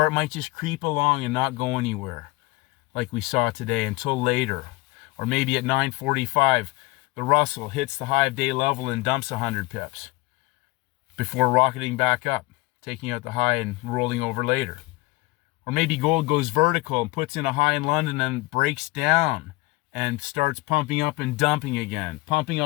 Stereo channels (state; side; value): quieter; right; 22.1 dB